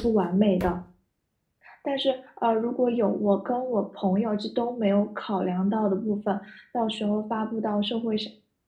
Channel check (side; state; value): both; identical; correlation 1.00